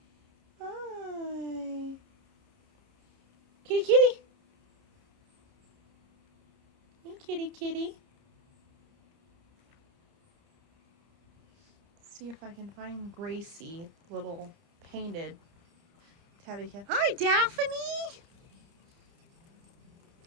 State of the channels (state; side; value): late; left; 30 ms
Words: Hi. Kitty, kitty. Hey, kitty, kitty. See if I can find Gracie, little painted tabby cat. Hi, Daphne.